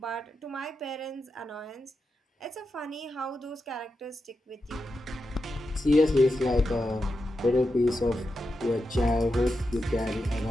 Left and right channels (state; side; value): normal; both; correlation 0.88